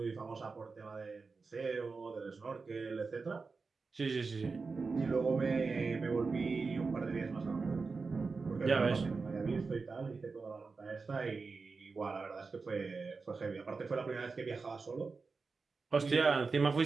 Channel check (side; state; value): left; quieter; 4.4 dB